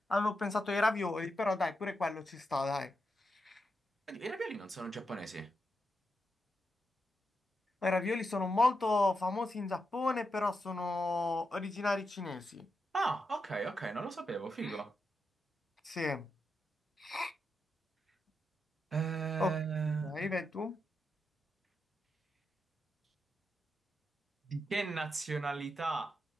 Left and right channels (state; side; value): normal; both; correlation 0.85